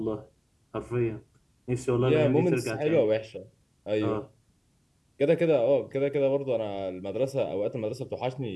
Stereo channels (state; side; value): identical; both; correlation 1.00